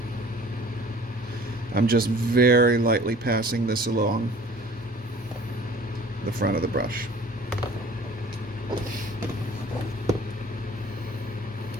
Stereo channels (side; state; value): both; normal; correlation 0.48